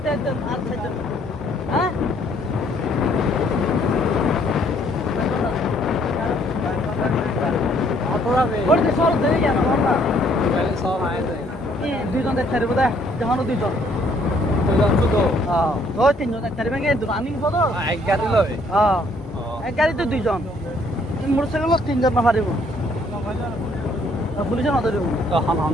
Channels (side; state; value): both; normal; correlation 0.65